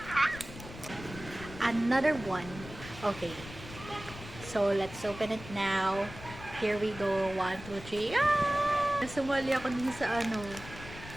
Another one. Okay. So, let's open it now. Here we go. 1, 2, 3. Ah! Sumali ako din sa ano.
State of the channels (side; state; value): left; noise; rumble, 14 dB below the sound